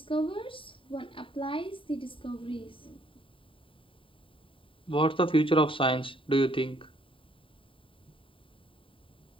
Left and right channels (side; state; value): right; late; 0.25 ms